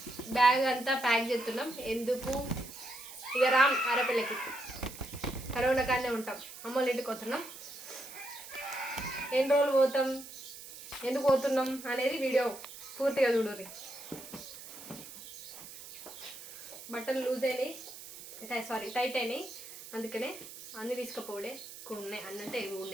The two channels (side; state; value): right; noise; hiss, 14 dB below the sound